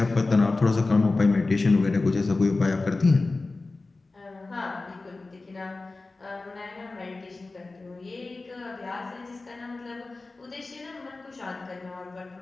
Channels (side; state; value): right; quieter; 3.4 dB